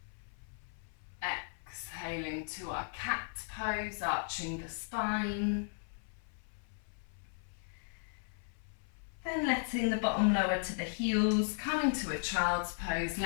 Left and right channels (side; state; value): right; silent; 53 dB below the other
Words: Exhaling to our cat pose, arching the spine. Then letting the bottom lower to the heels, coming to a child's pose,